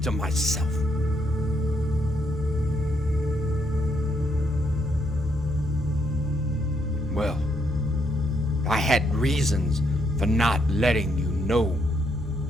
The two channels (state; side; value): normal; both; correlation 0.74